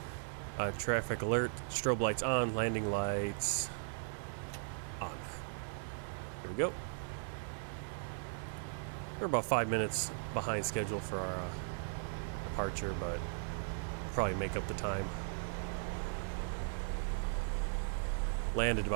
traffic alert, strobe lights on, landing lights on. Here we go. We're about 5 minutes behind schedule for our departure, but probably make up the time. Landed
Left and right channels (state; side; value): silent; left; digital silence